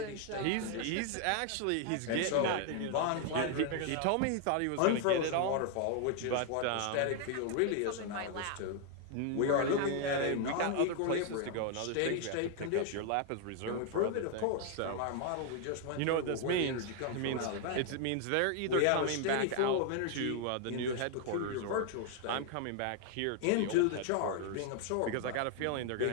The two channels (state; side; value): different; both; correlation 0.00